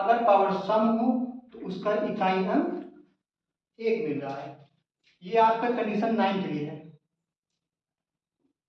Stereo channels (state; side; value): identical; both; correlation 1.00